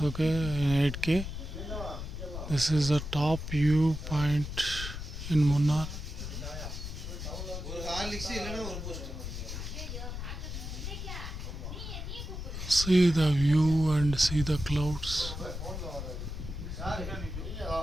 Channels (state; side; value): noise; left; rumble, 7 dB below the sound